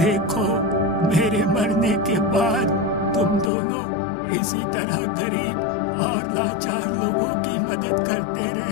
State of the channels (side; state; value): right; drops out; at 3.5 s